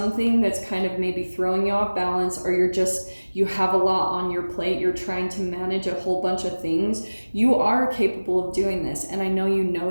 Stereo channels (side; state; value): both; inverted; correlation -1.00